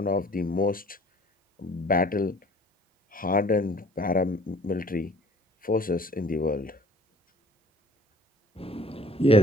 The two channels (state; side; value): normal; both; correlation 0.53